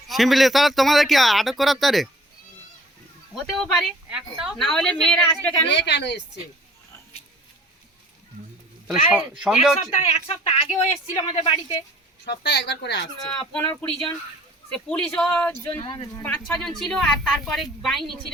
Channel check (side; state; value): both; normal; correlation 0.51